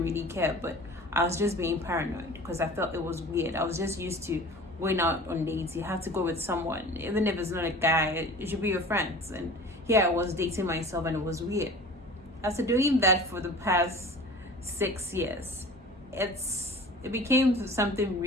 really care, but I was just being paranoid because I felt it was weird. I was just used to going out on dates. You have to go with someone, even if it's not a guy, it should be your friends. And here I was dating myself and it was weird. After doing that for the past 6 years, it became something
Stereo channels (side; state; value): both; normal; correlation 0.40